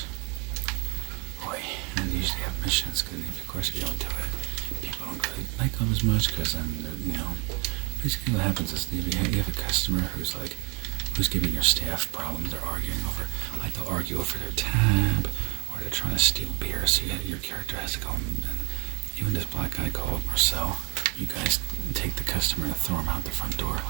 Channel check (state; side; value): quieter; left; 32.4 dB